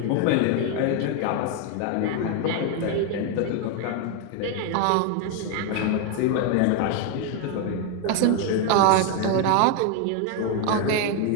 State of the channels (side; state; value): both; different; correlation 0.01